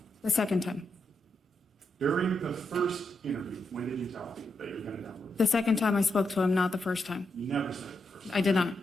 The second time. During the first interview, when did you tell him that you were going to download it? The second time I spoke to him, not the first time. You never said it the first time. I did not.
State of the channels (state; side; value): normal; both; correlation 0.83